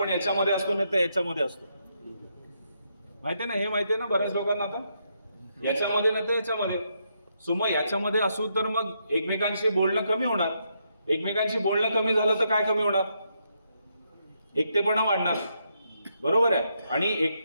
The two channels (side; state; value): both; inverted; correlation -0.79